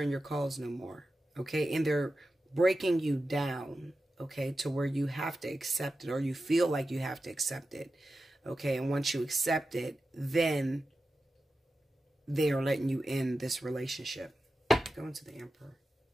your calls no more. Okay, and they're breaking you down, okay, to where you have to accept it, or you feel like you have to accept it, okay, and once you accept it, then they are letting you in this relationship. Go into the Emperor.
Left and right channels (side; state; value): both; normal; correlation 0.92